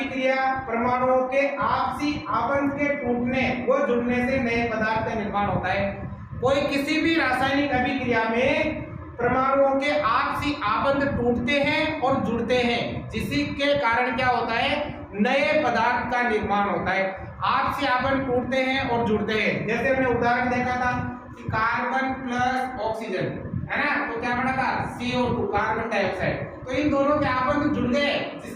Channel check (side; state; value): both; identical; correlation 1.00